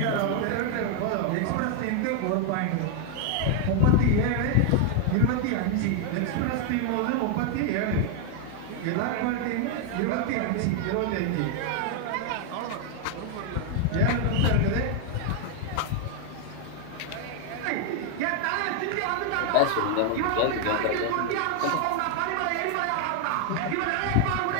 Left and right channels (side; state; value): both; different; correlation 0.00